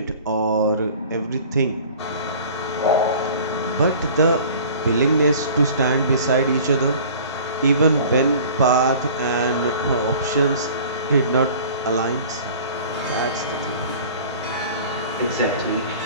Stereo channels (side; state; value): both; inverted; correlation -0.45